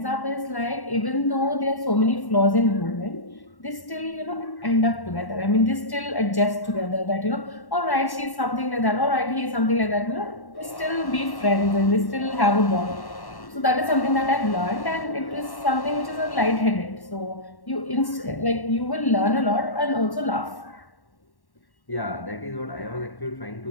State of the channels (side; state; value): right; late; 1.1 ms